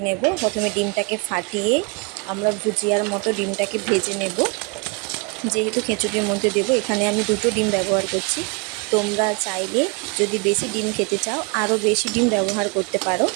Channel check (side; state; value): left; quieter; 30.9 dB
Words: নেব। প্রথমে ডিমটাকে ফাটিয়ে আমরা ভুজিয়ার মতো ডিমটাকে ভেজে নেব। যেহেতু খিচুড়ির মধ্যে দেবো, এখানে আমি 2টো ডিম ব্যবহার করছি। তোমরা চাইলে যদি বেশি ডিম খেতে চাও আরও বেশি ডিম ব্যবহার করতে পারো।